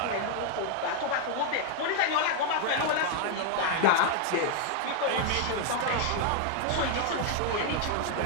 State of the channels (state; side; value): different; both; correlation 0.01